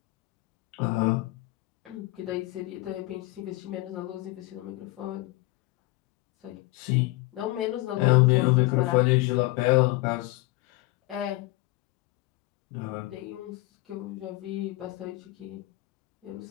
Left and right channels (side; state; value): right; quieter; 20.2 dB